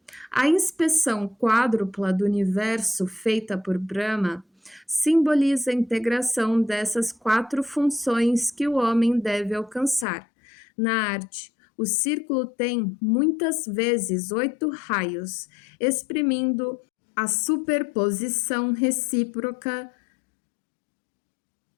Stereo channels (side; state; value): right; drops out; at 10.1 s